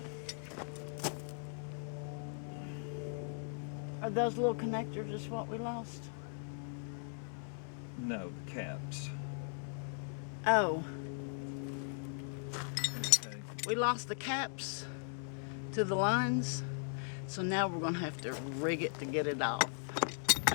Are those little connectors just what we lost? No, the caps. Oh, Okay. we lost the caps to the lines, So now we're gonna have to rig it to get it off.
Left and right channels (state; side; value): silent; right; digital silence